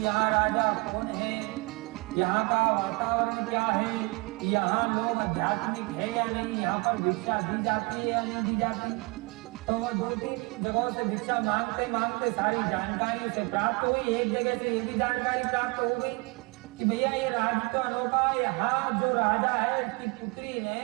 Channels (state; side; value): quieter; left; 27.8 dB